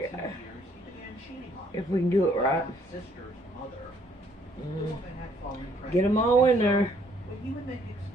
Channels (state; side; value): normal; both; correlation 0.65